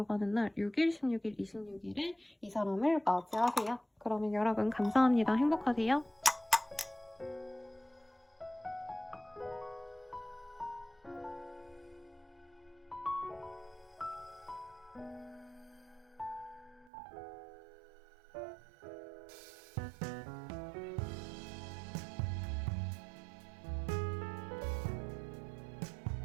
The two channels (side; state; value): left; drops out; at 16.9 s